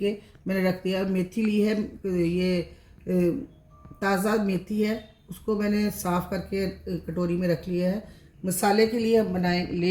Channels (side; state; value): both; identical; correlation 1.00